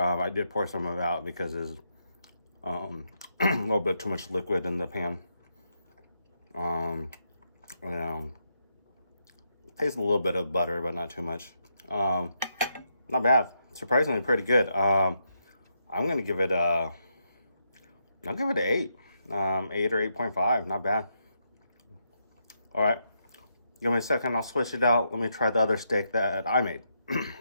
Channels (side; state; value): both; inverted; correlation -0.80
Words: did pour some of it out because there's a little bit too much liquid in the pan. Taste a little bit of butter, but not too much. not bad. Surprisingly pretty good. I'm gonna give it I'll give it an 8. 8 or 8.5. Not bad. All right. Give me a second. I'll switch it out. Let me try the other steak that I made.